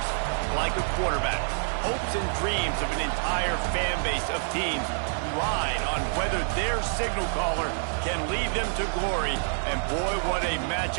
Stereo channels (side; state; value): left; silent; digital silence